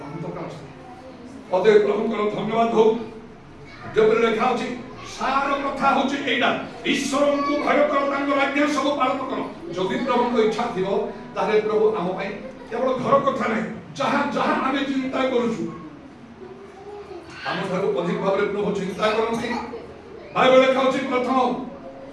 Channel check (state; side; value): identical; both; correlation 1.00